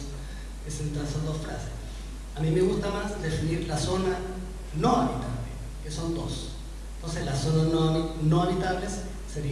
frases. A mí me gusta más definir la zona no habitable, que son dos. Entonces las zonas no habitables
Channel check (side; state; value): both; identical; correlation 1.00